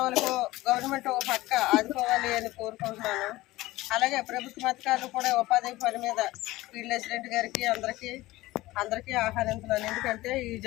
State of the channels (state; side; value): quieter; right; 18.3 dB